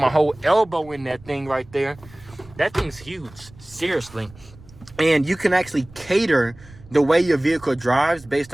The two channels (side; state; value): right; noise; rumble, 22 dB below the sound